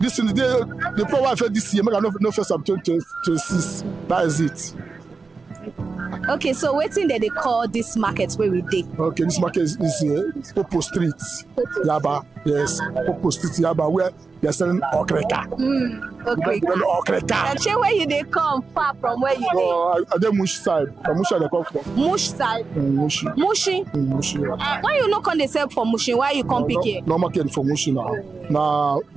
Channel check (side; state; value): left; quieter; 4.4 dB